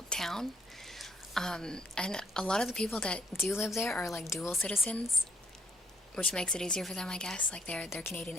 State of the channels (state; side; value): normal; both; correlation 0.71